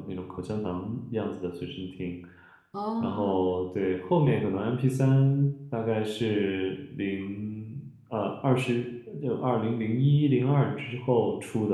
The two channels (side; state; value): both; identical; correlation 1.00